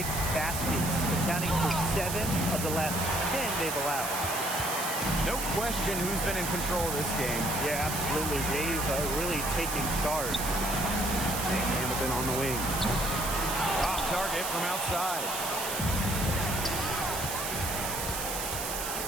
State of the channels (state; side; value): noise; right; hiss, 4 dB below the sound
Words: baskets, accounting for 7 of the last 10 they've allowed. No question who's been in control of this game. Yeah, absolutely. They've really taken charge. Hamilton on the wing. Off target from outside.